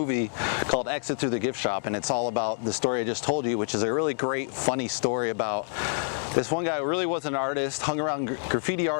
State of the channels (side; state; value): right; silent; digital silence